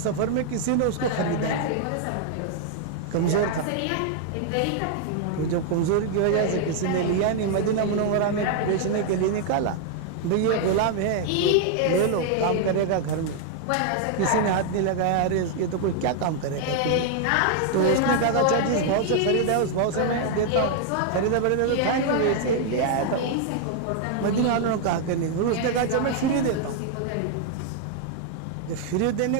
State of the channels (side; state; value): both; different; correlation 0.00